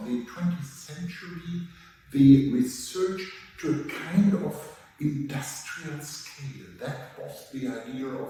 the 20th century the research to a kind of industrial scale. That was the idea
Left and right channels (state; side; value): identical; both; correlation 1.00